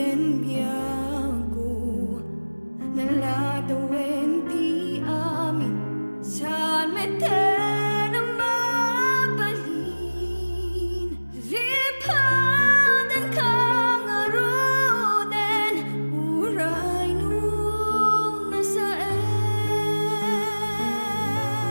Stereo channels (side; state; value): both; inverted; correlation -1.00